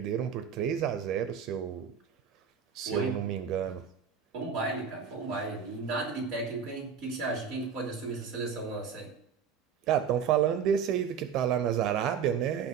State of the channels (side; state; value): left; quieter; 7.1 dB